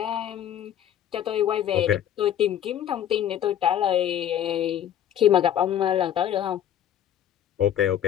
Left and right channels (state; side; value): quieter; right; 10.5 dB